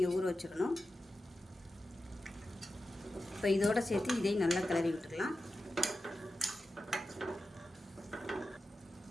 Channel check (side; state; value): both; normal; correlation 0.92